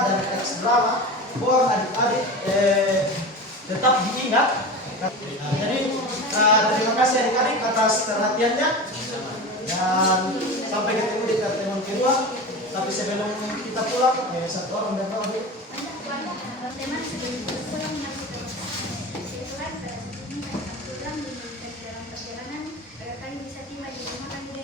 dan teks drama mohon adik-adik tetap diingat. Jadi terima kasih adik-adik atas perhatiannya dan sampai ketemu di pertemuan kedua. Tapi sebelum kita pulang, satu orang dan dua. Teman sebelum pulang menyampaikan setelah pulang diberikan dalam perjalanan agar kami bisa tiba di rumah kami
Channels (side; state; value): both; normal; correlation 0.29